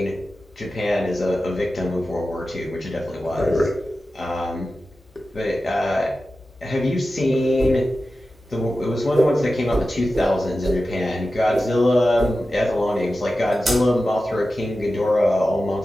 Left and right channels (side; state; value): both; normal; correlation 0.93